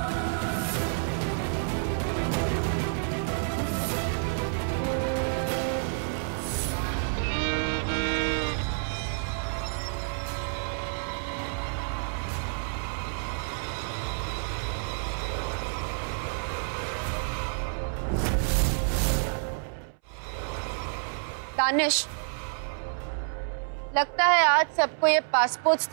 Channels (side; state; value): left; silent; 59 dB below the other